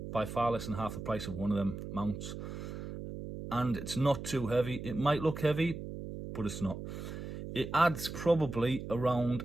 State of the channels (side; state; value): right; noise; hum, 8 dB below the sound